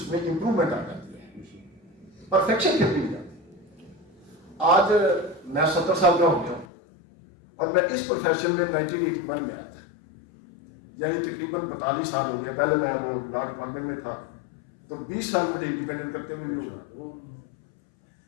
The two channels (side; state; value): right; drops out; at 6.7 s